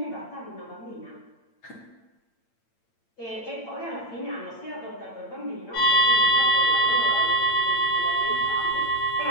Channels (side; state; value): right; late; 8.8 ms